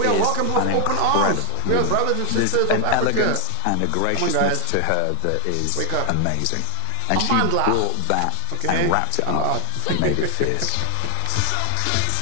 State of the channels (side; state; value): both; different; correlation 0.00